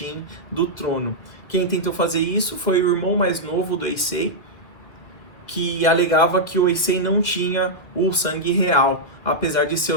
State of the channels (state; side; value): late; right; 2.0 ms